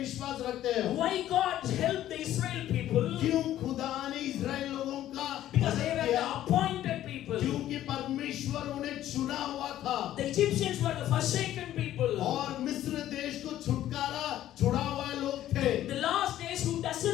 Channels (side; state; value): right; quieter; 12.8 dB